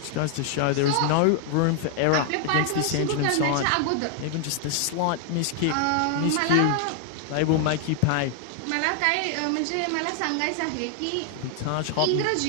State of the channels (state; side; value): different; both; correlation 0.00